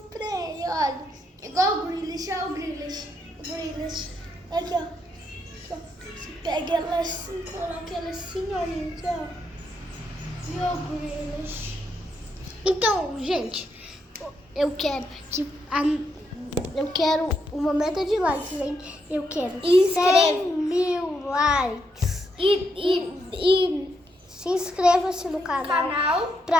olha. Igual o Grealish, olha o Grealish. O Grealish. Aqui, ó. Aqui, ó. Você pega ela assim, coloca ela assim, ó, gente, ó. Viu o Grealish? Então, gente, eu quero uma meta de likes, hein? Eu quero 100.000 likes. E se inscreva-se no canal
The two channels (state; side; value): normal; both; correlation 0.79